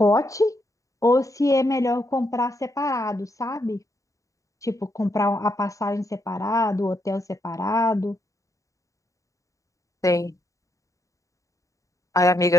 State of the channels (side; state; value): right; late; 0.16 ms